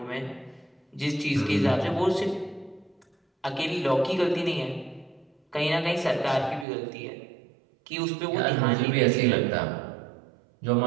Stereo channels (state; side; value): drops out; left; at 6.7 s